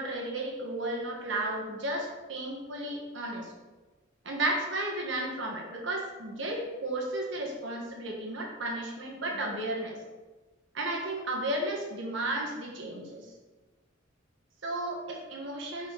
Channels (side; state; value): both; normal; correlation 0.08